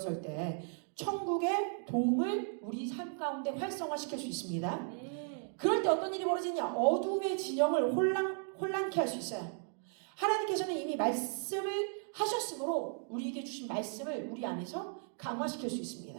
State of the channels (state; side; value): silent; left; 54 dB below the other